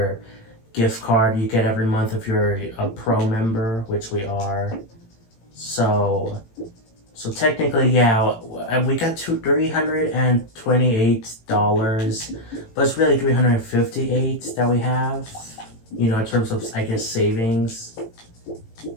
gift card you get every month if you're a pro member, which we are. So technically, yeah, we got $328, but it's really $358 that we have, in terms of, I guess, savings.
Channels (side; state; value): right; late; 18 ms